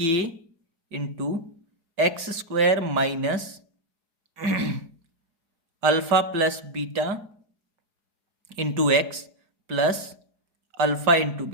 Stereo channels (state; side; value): late; left; 4.8 ms